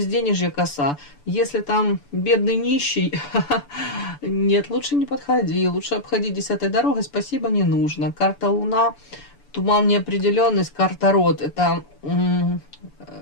коса. Если там бедный нищий, нет, лучше не подходи, лучше обходи 10-й дорогой, спасибо, не нужно. Карта Луна, туман, неопределенность, карта род. Это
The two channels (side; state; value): right; late; 6.9 ms